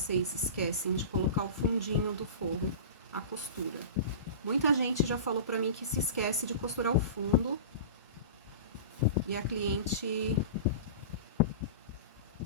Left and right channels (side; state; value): both; inverted; correlation -0.33